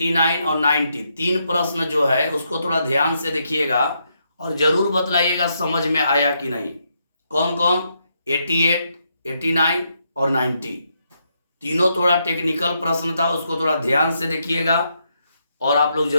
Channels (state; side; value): inverted; both; correlation -0.79